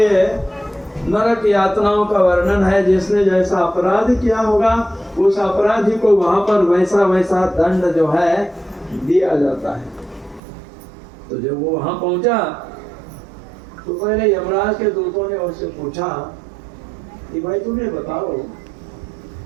नरक यातनाओं का वर्णन है। जिसने जैसा अपराध किया होगा उस अपराधी को वहां पर वैसा वैसा दंड जो है दिया जाता है। तो जब वो वहां पहुंचा तो पहले यमराज के दूतों ने उससे पूछा कि भाई तुम्हें बताओ,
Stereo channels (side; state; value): left; drops out; at 10.4 s